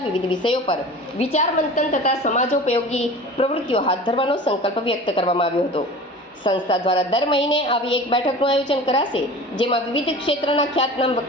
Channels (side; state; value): both; normal; correlation 0.38